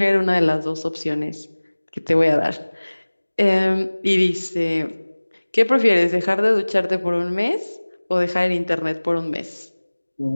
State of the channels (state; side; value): inverted; both; correlation -1.00